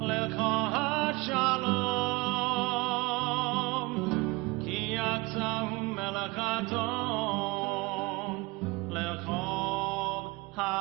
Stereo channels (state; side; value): quieter; left; 24.4 dB